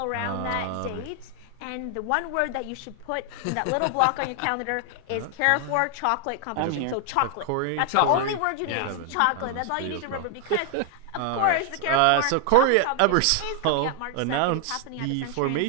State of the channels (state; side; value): different; both; correlation 0.00